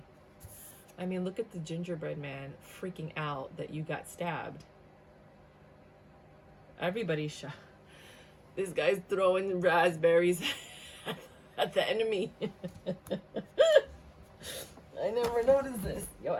I mean, look at the gingerbread man freaking out that you got stabbed. Everybody's shocked. This guy's throwing raspberries at the enemy. I never noticed this. Yo,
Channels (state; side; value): identical; both; correlation 1.00